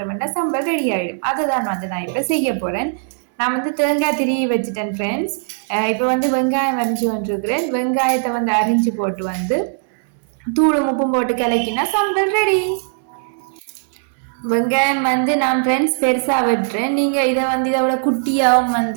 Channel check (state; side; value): silent; left; 66 dB below the other